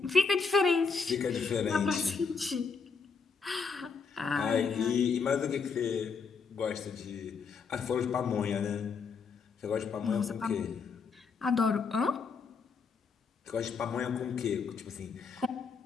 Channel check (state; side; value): quieter; right; 5.3 dB